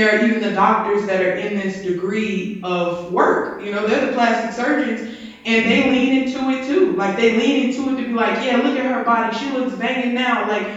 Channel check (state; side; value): identical; both; correlation 1.00